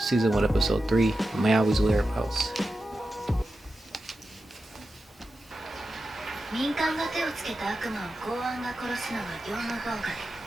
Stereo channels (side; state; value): both; normal; correlation 0.91